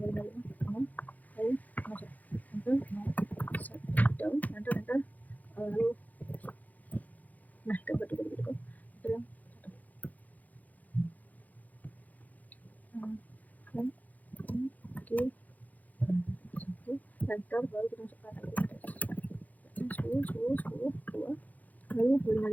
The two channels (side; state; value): right; late; 0.079 ms